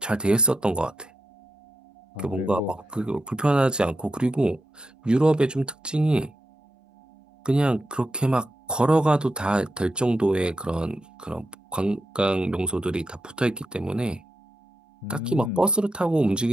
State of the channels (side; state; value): both; normal; correlation 0.86